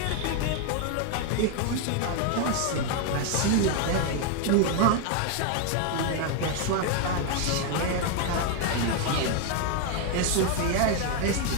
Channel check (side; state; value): both; different; correlation 0.01